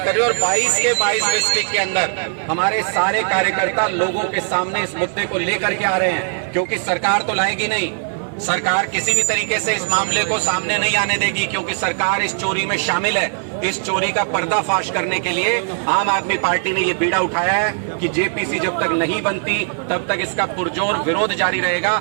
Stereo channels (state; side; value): silent; left; 57 dB below the other